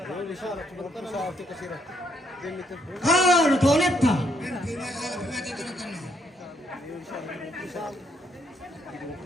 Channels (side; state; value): both; normal; correlation 0.73